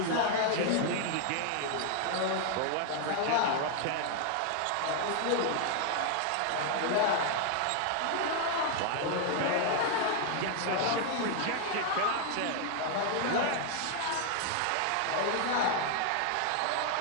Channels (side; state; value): both; different; correlation 0.00